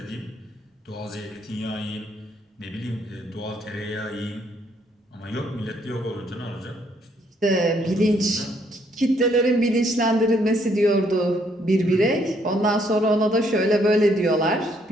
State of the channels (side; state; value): both; normal; correlation 0.69